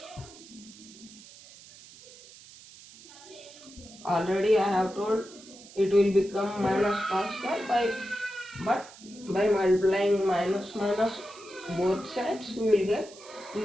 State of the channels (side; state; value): right; noise; hiss, 20 dB below the sound